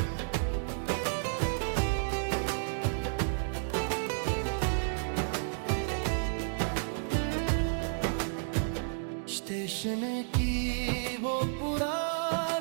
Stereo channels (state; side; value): silent; left; digital silence